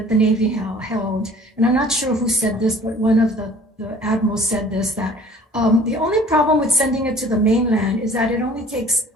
the Navy held, and I'm not sure who said this, but one of the admirals said this, that the only problem with sending it to the mainland is that it only takes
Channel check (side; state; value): both; normal; correlation 0.50